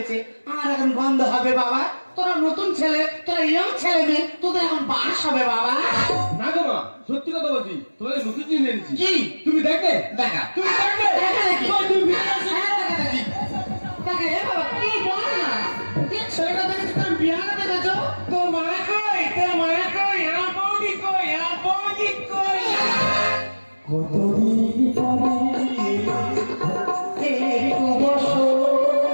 আমার এখন গন্ধ হবে বাবা। তোরা নতুন ছেলে, তোরা ইয়ং ছেলে মেয়ে, তোদের এখন বাস হবে বাবা। না গো মা, সত্যি কথা বলছি, তোমাদের নতুন জিনিস এনেছি। কি? তুমি দেখবে? দেখা তুমি দেখবে? দেখা দেখি। কই তুমি বিয়ে আছো? হ্যাঁ, দেখা দেখি। দেখা, এ বাবা, কি বল না? কি ছেলেটা দেখেছি তোর বিয়াটা দেখেছো? তোর মা কই? তোর মা কই? আমার বৌদি কই? আমার বৌদি কই? কতদিন পরে এই বছর,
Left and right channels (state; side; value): inverted; both; correlation -1.00